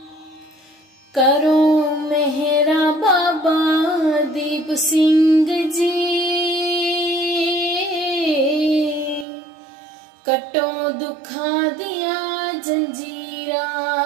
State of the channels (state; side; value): drops out; left; at 9.2 s